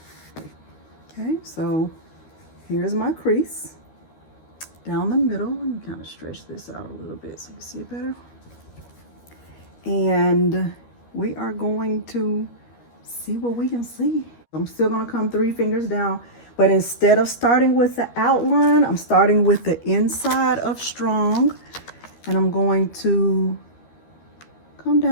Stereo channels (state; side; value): late; right; 13 ms